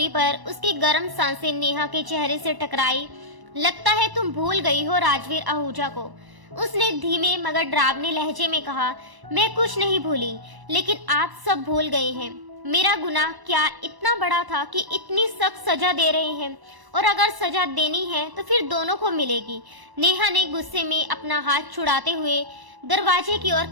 पर उसकी गर्म सांसें नेहा के चेहरे से टकराई। लगता है तुम भूल गई हो राजवीर आहूजा को, उसने धीमे मगर डरावने लहजे में कहा। मैं कुछ नहीं भूली, लेकिन आप सब भूल गए हैं। मेरा गुनाह क्या इतना बड़ा था कि इतनी सख्त सजा दे रहे हैं? और अगर सजा देनी है तो फिर दोनों को मिलेगी। नेहा ने गुस्से में अपना हाथ छुड़ाते हुए दरवाजे की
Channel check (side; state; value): left; late; 1.0 ms